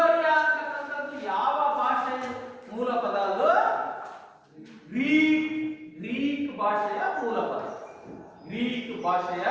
ಅಂತಕ್ಕಂಥದ್ದು ಯಾವ ಭಾಷೆ ಮೂಲ ಪದ? ಅದು ಗ್ರೀಕ್ ಭಾಷೆಯ ಮೂಲ ಪದ. ಗ್ರೀಕ್ ಭಾಷೆಯ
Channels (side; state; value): both; identical; correlation 1.00